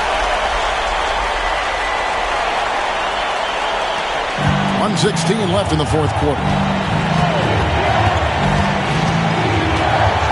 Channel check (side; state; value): both; identical; correlation 1.00